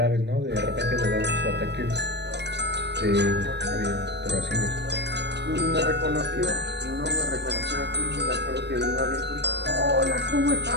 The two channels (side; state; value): left; late; 0.50 ms